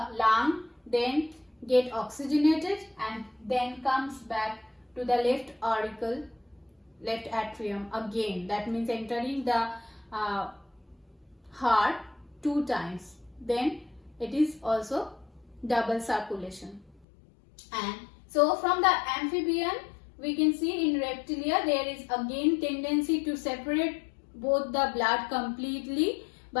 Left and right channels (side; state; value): right; drops out; at 17.1 s